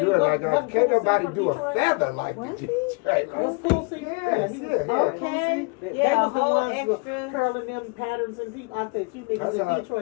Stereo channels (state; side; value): quieter; right; 31.4 dB